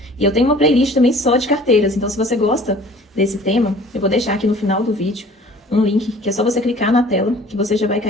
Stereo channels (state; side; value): normal; both; correlation 0.49